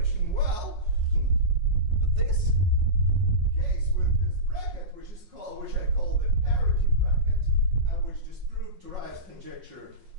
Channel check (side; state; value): left; late; 5.5 ms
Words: Well, this case with this bracket, which I call the parity bracket, and which disproved Turai's conjecture